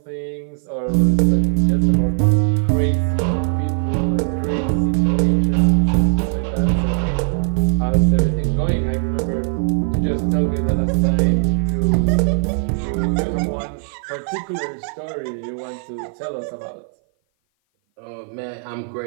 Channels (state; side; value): silent; left; 57 dB below the other